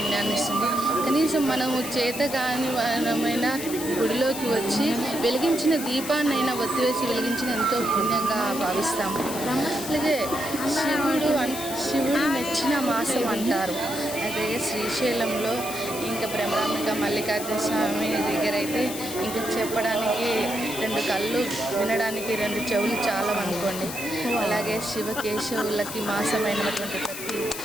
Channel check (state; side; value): noise; left; hiss, 9 dB below the sound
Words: ఇస్తుంది. కనీసం మనము చేతగాని మనమైనా గుడిలోకి వచ్చి వెలిగించిన దీపాన్నైనా ఒత్తివేసి వెలిగించిన ఎంతో పుణ్యంగా భావిస్తాము. అలాగే శివుడు మెచ్చిన మాసం అంటారు. అదే శ్రీశైలంలో ఇంకా బ్రహ్మరాంబిక మల్లికార్జున స్వామి దగ్గర అయితే ఇంకా చెప్పడానికి 2 కళ్ళు, వినడానికి 2 చెవులు చాలా అనుకోండి. అలాగే శివకేశవులకి మాసమైనటువంటి